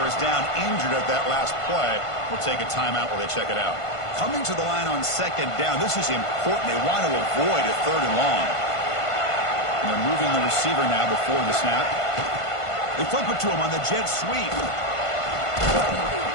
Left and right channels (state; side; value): late; right; 1.5 ms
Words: is down injured at that last play. We'll take a timeout while they check it out. Coming to the line on second down, this is important. They want to avoid a third and long. And they're moving the receiver now before the snap. They flip it to him on the jet sweep.